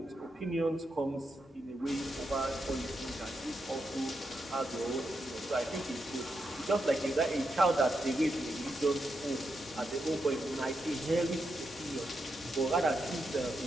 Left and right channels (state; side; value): normal; both; correlation 0.84